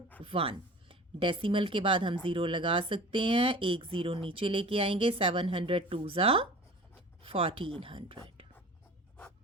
डेसिमल के बाद हम ज़ीरो लगा सकते हैं, एक ज़ीरो नीचे लेके आएंगे, 702 ज़ा 1400।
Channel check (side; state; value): both; normal; correlation 0.40